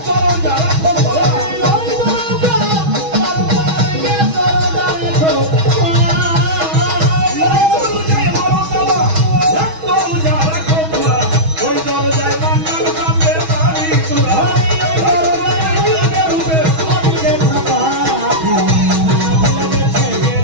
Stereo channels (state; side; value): late; left; 6.2 ms